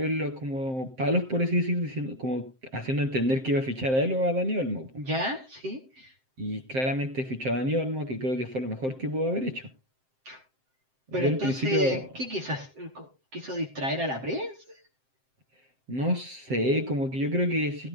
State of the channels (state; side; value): late; left; 7.6 ms